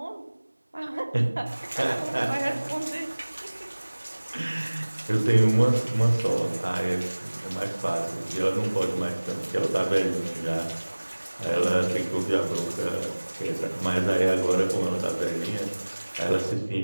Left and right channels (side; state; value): both; inverted; correlation -1.00